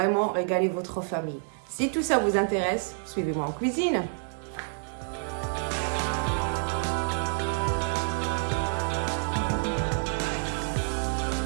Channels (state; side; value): silent; left; digital silence